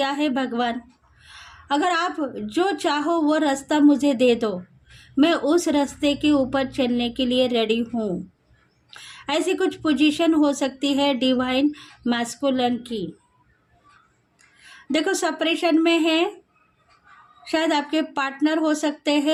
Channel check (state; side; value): identical; both; correlation 1.00